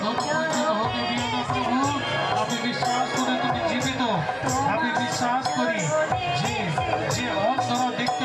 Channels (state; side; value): identical; both; correlation 1.00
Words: হতে দিও না প্রভু। আমি বিশ্বাস করি তুমি জীবিত। আমি বিশ্বাস করি যে অন্ধরা